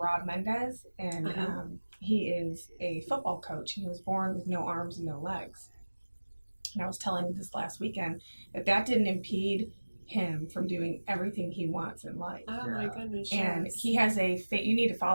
Mendez, and he is a football coach, and he was born with no arms and no legs. And I was telling him this last weekend that didn't impede him from doing everything he wants in life. Oh my goodness. And yes. he has you need to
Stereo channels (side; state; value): both; inverted; correlation -1.00